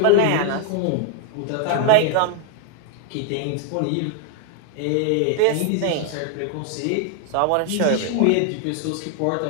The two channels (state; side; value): different; both; correlation 0.00